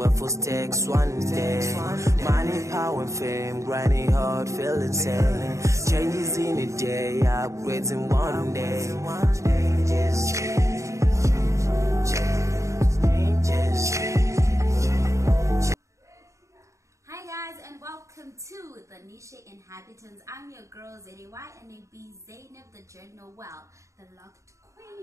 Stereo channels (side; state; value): left; late; 0.15 ms